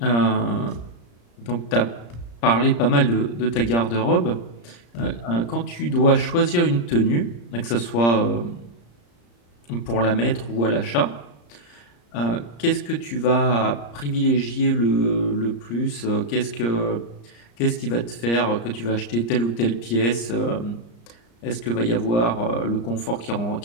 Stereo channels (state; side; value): late; right; 34 ms